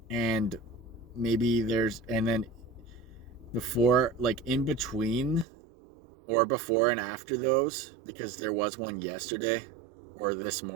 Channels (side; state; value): left; drops out; at 5.5 s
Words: And maybe and then before, like in between, or before and after those, because there was one yesterday, or this